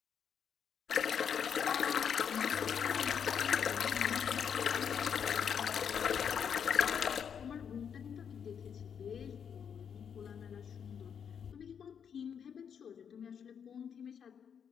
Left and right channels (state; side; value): quieter; right; 7.6 dB